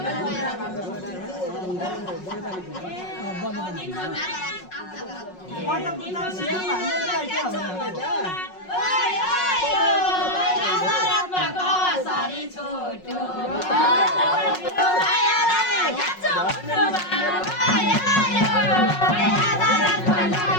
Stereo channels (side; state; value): right; late; 5.5 ms